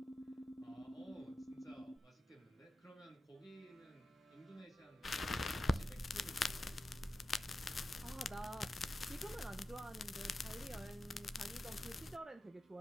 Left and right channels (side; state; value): both; normal; correlation 0.91